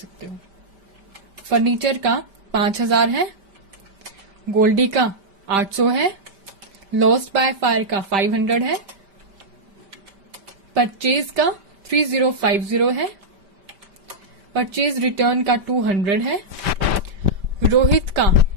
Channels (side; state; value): left; late; 5.1 ms